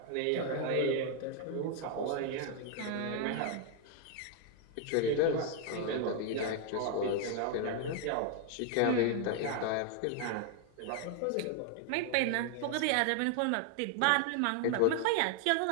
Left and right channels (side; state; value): both; different; correlation 0.00